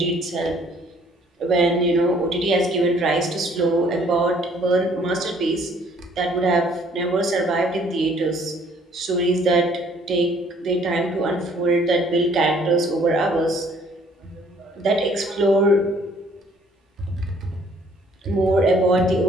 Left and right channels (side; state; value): both; normal; correlation 0.60